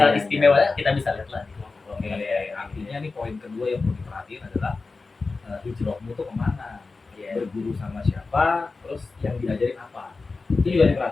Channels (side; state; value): right; quieter; 3.9 dB